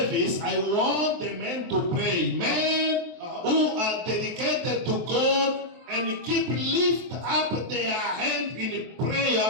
I want the men to pray. Men who are dedicated to God and lift up their hand in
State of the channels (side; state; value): left; late; 23 ms